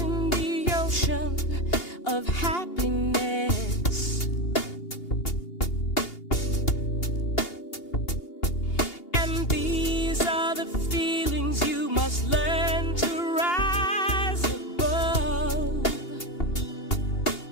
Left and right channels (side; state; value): right; late; 2.8 ms